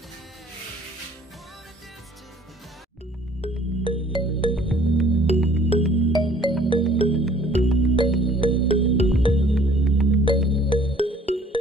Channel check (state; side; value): normal; both; correlation 0.55